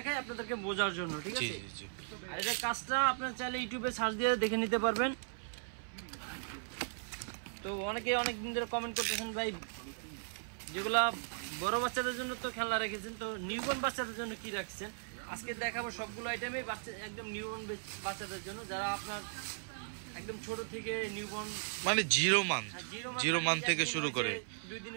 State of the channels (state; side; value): silent; left; 53 dB below the other